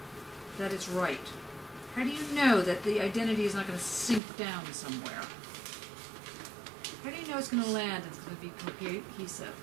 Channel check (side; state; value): left; drops out; at 4.2 s